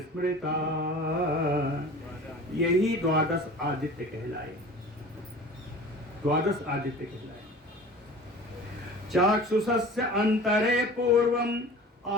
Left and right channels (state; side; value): normal; both; correlation 0.40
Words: स्मृता, यही द्वादश आदित्य कहलाए, द्वादश आदित्य कहलाए। चाक्षुषस्य अंतरे पूर्वम